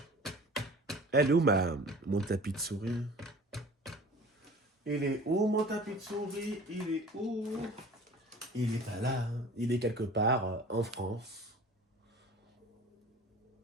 Elle est où mon tapis de souris? Il est où mon tapis de souris? Il est où? Il est pas là. Il est quelque part en France.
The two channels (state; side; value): normal; both; correlation 0.43